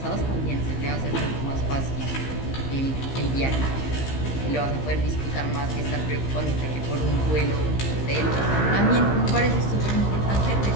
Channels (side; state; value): right; late; 15 ms